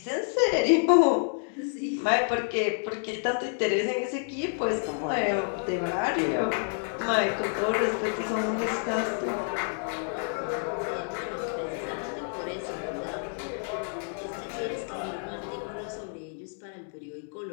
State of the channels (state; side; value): silent; right; 59 dB below the other